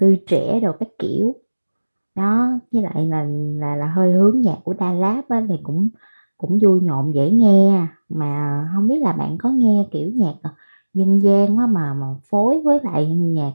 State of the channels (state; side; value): inverted; both; correlation -1.00